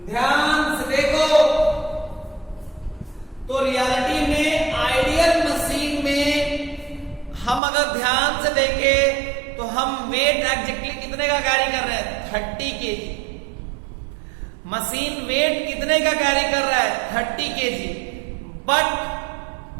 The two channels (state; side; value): drops out; left; at 7.6 s